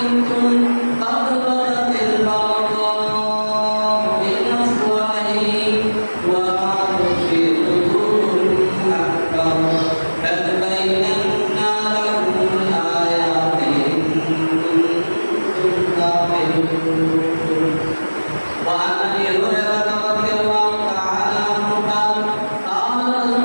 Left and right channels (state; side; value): inverted; both; correlation -1.00